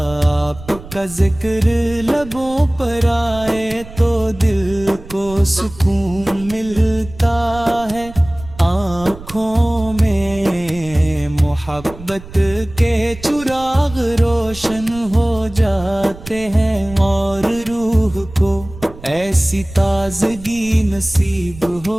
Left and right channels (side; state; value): right; noise; rumble, 16 dB below the sound